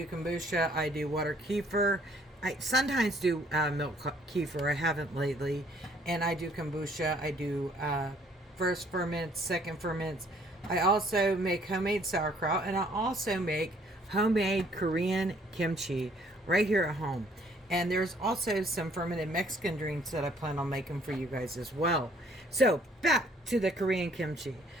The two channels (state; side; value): normal; both; correlation 0.61